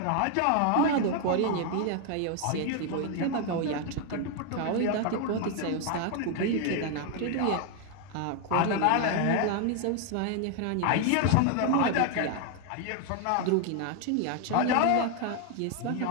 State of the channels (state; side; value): different; both; correlation 0.01